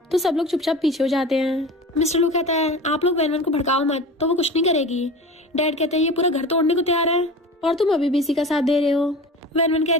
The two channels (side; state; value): both; normal; correlation 0.34